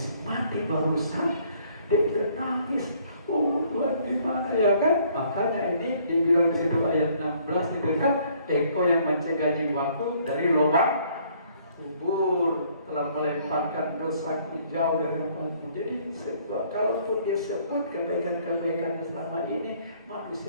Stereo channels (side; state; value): both; inverted; correlation -0.62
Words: mati barusan, dia udah nangis. Oh Tuhan, gimana ya kan? Makanya ini dibilang di situ ayat 16 itu kan, Engkau yang mencegah jiwaku dari lubang kubur, telah melemparkan dosaku jauh dari hadapanmu. Jadi kalaupun dia sebut kebaikan-kebaikan selama ini,